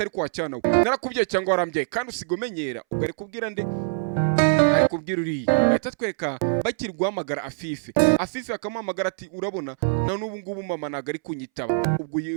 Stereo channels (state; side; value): silent; left; 62 dB below the other